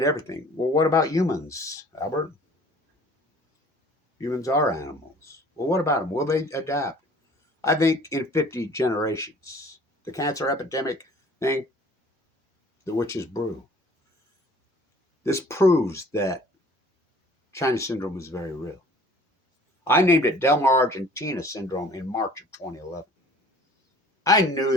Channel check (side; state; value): both; normal; correlation 0.51